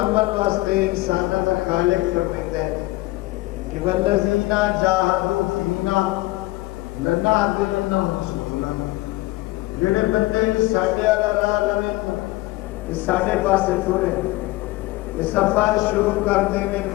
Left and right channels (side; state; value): right; quieter; 19.8 dB